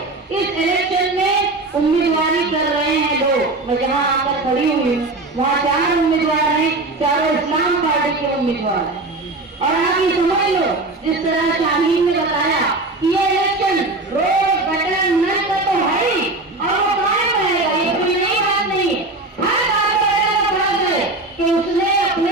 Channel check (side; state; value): left; quieter; 3.0 dB